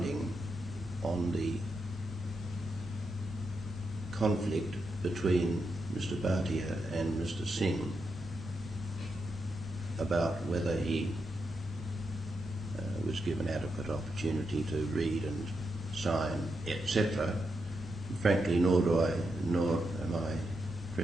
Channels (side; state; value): both; normal; correlation 0.85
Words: on the conflict between Mr. Bhatia and Mr. Singh about whether he was given adequate opportunity to read and sign, etc. Frankly, nor am I